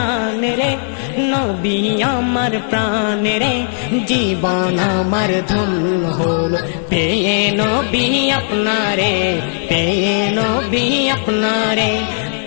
রে নবী আমার প্রাণে রে জীবন আমার ধন্য হলো পেয়ে নবী আপনারে পেয়ে নবী আপনারে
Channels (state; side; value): silent; right; 65 dB below the other